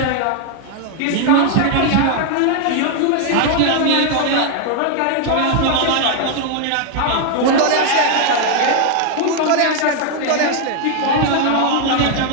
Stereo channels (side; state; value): both; different; correlation 0.01